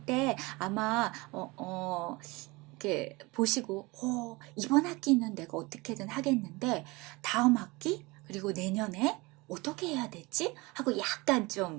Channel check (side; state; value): left; quieter; 24.0 dB